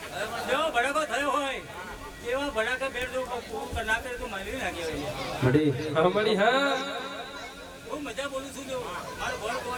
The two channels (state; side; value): identical; both; correlation 1.00